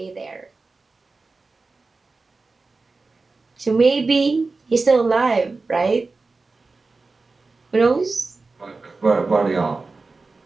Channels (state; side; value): quieter; left; 3.8 dB